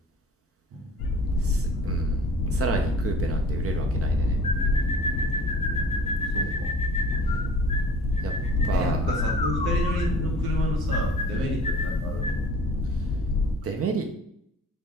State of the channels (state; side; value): normal; both; correlation 0.47